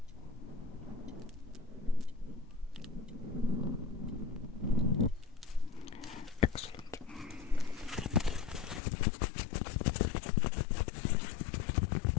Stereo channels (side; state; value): right; drops out; at 8.8 s